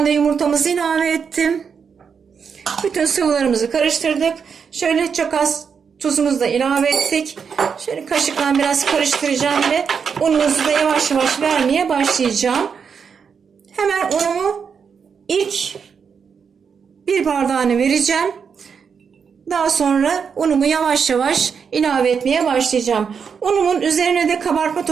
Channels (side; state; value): left; quieter; 6.4 dB